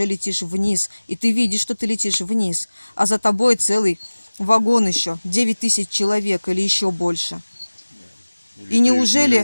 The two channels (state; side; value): inverted; both; correlation -1.00